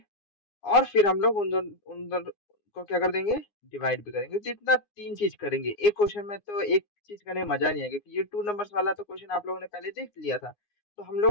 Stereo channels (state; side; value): late; right; 9.7 ms